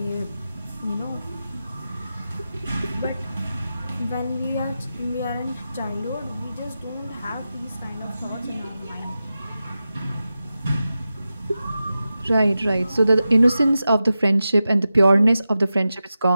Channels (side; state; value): both; inverted; correlation -0.92